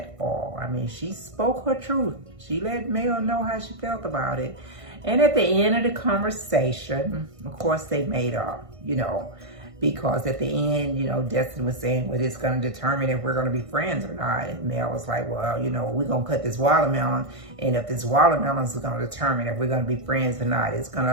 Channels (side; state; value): left; late; 1.5 ms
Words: mean, she spoke her truth. She let Mel know how she felt about it. And at the end of the conversation, of course, they made up, because at the end, Destiny was saying, well, it's going to determine if we're going to be friends or not. And Mel was like, well, we're going to cut this watermelon. And if this watermelon is going to determine if we're going to be friends or not,